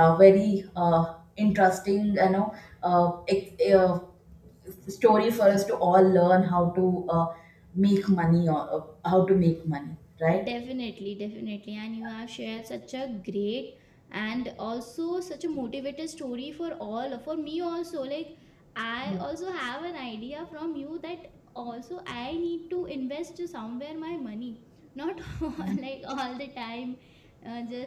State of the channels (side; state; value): both; identical; correlation 1.00